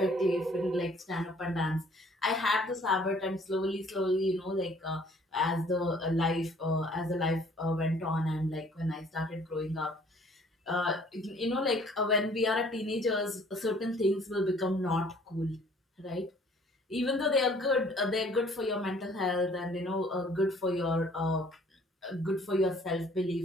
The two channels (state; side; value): normal; both; correlation 0.57